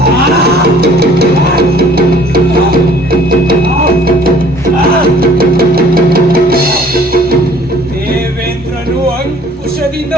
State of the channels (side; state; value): both; normal; correlation 0.54